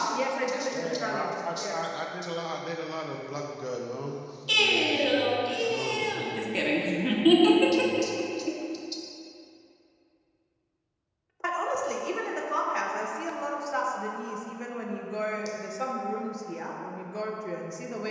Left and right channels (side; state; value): both; identical; correlation 1.00